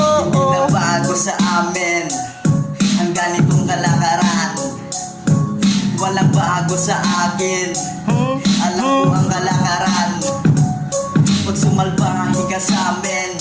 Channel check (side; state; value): both; identical; correlation 1.00